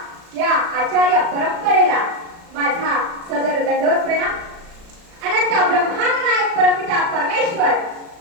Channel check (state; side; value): late; left; 36 ms